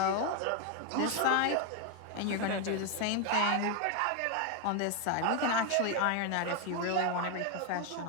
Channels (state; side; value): different; both; correlation 0.01